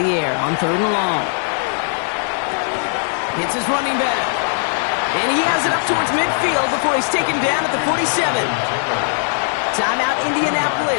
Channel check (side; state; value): right; silent; 56 dB below the other